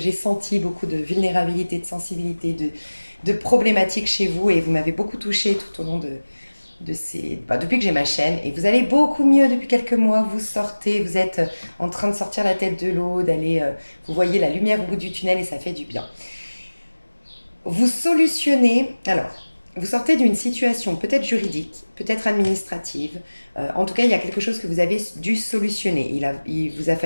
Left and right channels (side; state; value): both; inverted; correlation -1.00